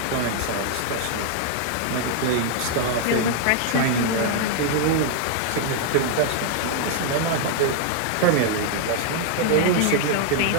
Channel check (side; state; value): both; different; correlation 0.00